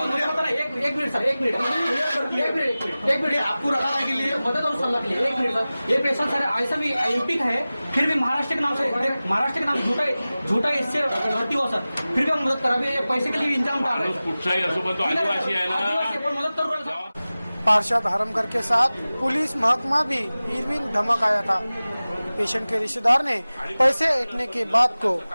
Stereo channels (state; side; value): inverted; both; correlation -0.97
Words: एक मिनट सर, एक मिनट आपको रखा है के लिए मदद और सलाह के लिए। एक मिनट सर, ये पेशेंट सर ऐसा भी एमपी का है, फिर भी महाराष्ट्र के नाम से झूठा इससे भर्ती हुआ सर, फिर भी हम मदद करा, भी पैसे के लिए इंतजाम कर रहे हैं। तो आदिवासी है ना, मदद कर रहे हैं। पार्षद हरमकर के साथ पुलिस महकमा भी इरविन धमक आया था। पेशेंट के रिश्तेदार ने पैसे ऐंठने के बात को